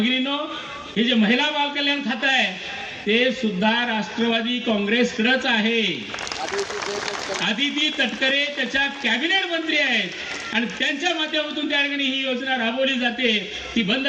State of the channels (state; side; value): identical; both; correlation 1.00